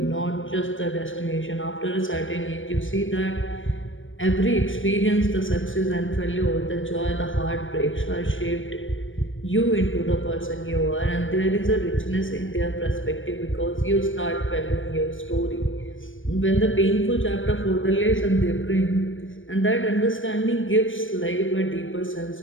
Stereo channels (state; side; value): late; right; 0.57 ms